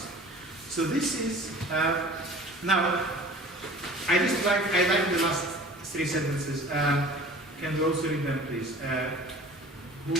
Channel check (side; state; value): both; normal; correlation 0.44